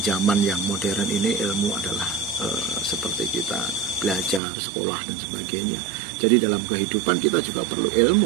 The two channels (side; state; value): left; drops out; at 4.4 s